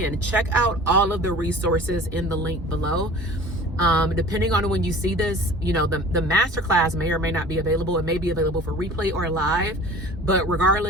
check out all of the resources in the link below. Depending on when you see this, you know, the masterclass may or may not be available. It may be available for replay or live, but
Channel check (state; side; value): normal; both; correlation 0.42